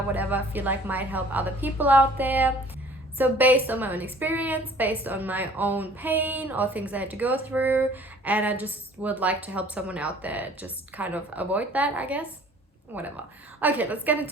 whatever I feel like might help other people out there. So based on my own experience, based on my own pain or things I had to go through, and I just would like to help someone out there just kind of avoid that, I guess. Whatever. Okay, let's get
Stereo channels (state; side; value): normal; both; correlation 0.52